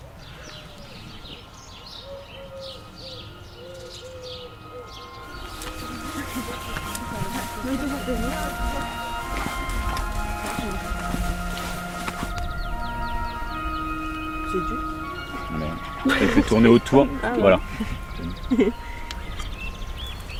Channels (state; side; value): identical; both; correlation 1.00